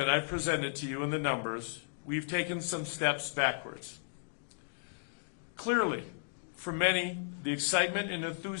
I presented to you in the numbers, we've taken some steps backwards. Clearly, for many, the excitement and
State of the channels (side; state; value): right; silent; digital silence